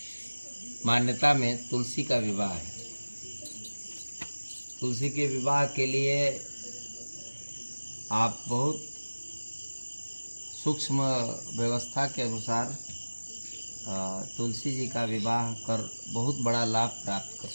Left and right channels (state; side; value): inverted; both; correlation -1.00